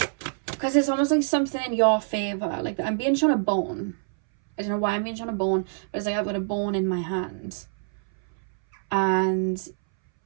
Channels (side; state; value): left; silent; 61 dB below the other